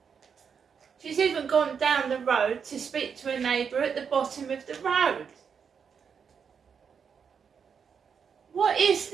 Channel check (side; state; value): left; quieter; 6.7 dB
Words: She's even gone down the road to speak to a neighbour at the bottom of the road. What is